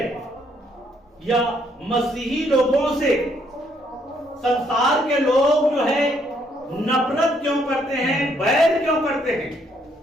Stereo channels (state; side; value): normal; both; correlation 0.70